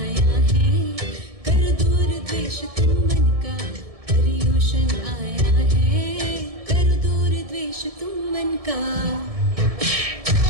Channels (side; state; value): left; late; 1.7 ms